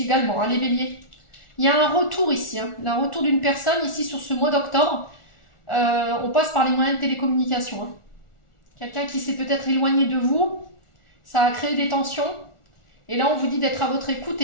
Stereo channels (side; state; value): right; late; 1.4 ms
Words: également, hein, les béliers. Il y a un retour ici, hein, un retour d'une personne ici sur ce mois d'octobre. On passe par les moyens de télécommunication. Hein. Quelqu'un qui s'est peut-être éloigné de vous, ça a créé des tensions. Et là, on vous dit d'être à votre écoute